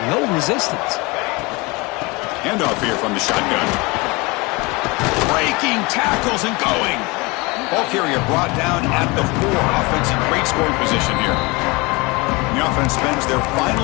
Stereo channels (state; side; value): quieter; right; 25.5 dB